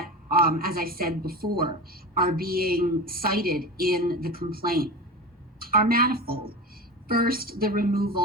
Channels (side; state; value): both; normal; correlation 0.28